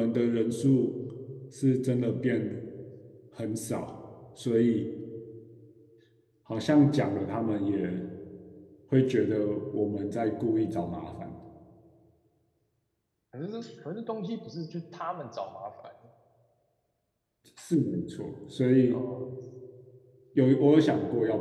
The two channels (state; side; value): identical; both; correlation 1.00